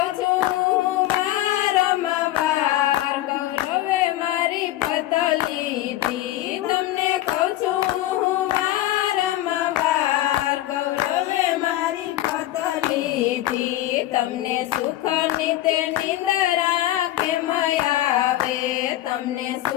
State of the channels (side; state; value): right; quieter; 14.8 dB